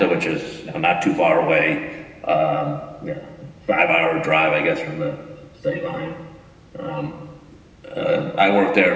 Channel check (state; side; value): identical; both; correlation 1.00